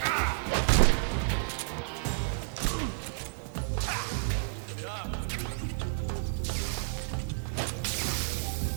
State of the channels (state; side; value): silent; left; digital silence